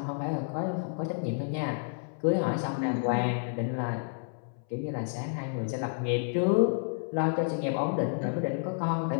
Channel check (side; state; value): right; silent; 58 dB below the other